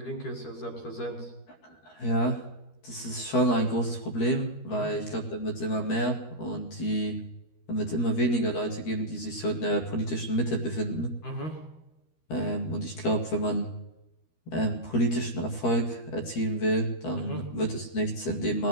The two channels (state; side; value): late; right; 13 ms